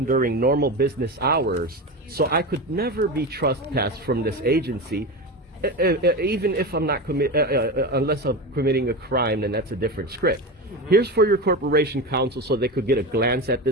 during normal business hours. So I could never be trespassed from this agency, even if I'm not unless I'm committing a crime, then that's a different script. Here's for your corporation counsel so they could get a glance at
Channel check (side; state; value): both; normal; correlation 0.22